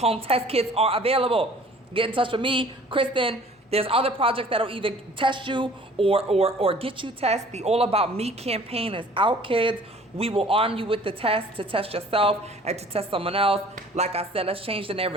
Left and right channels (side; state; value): both; normal; correlation 0.51